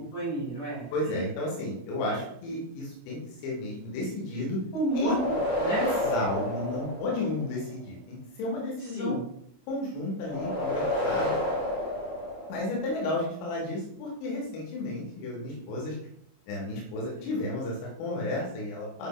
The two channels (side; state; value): right; late; 25 ms